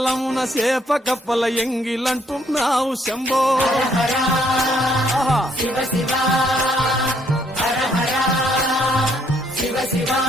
సేప కప్పల ఎంగిలంటున్నావు శంభో హర ఆహా. శివ శివ హర హర శివ శివ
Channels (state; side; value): normal; both; correlation 0.68